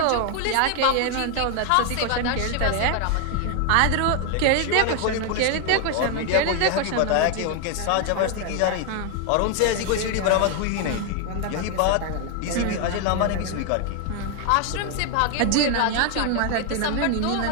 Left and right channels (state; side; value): different; both; correlation 0.00